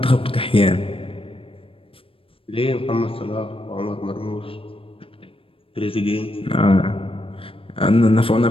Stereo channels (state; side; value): late; right; 0.26 ms